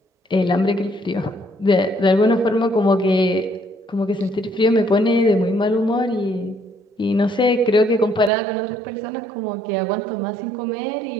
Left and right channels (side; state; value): left; drops out; at 8.3 s